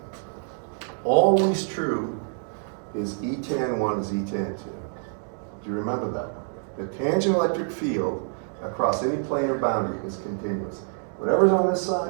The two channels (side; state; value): left; silent; 56 dB below the other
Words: always true, is E tan 1 is E tan 2. Do you remember that? The tangent electric field across any planar boundary is continuous. Whatever's on this